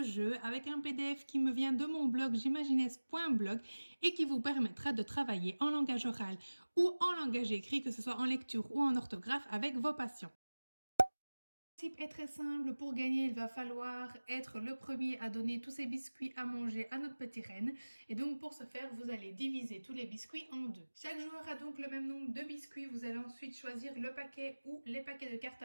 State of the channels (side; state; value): both; inverted; correlation -1.00